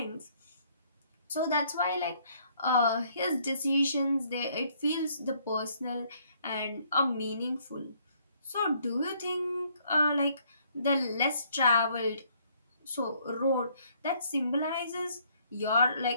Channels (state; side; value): inverted; both; correlation -0.65